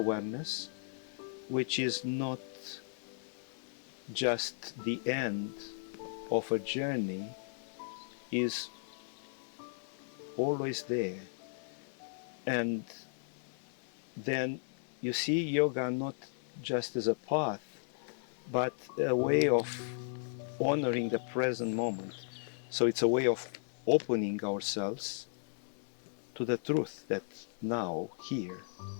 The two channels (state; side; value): silent; right; digital silence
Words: which is not just the end of a journey, is always there. And then you see yoga not just as a path, but a way of honoring the present moment. So it's a way of opening ourselves to the truth that now, here,